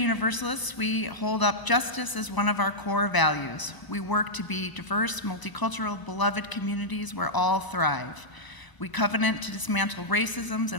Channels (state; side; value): late; right; 1.0 ms